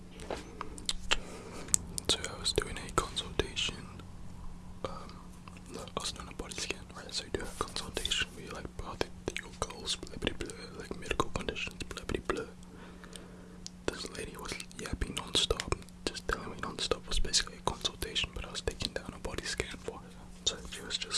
So I was doing a consultation. No, I was doing a body scan, right? So you do a consultation where you like, your goals, blah blah blah, like medical conditions, blah blah blah. This lady was yapping non-stop, just telling me non-stop. Was basically a consultation, but I was taking down a body scan for her. So she was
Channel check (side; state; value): both; identical; correlation 1.00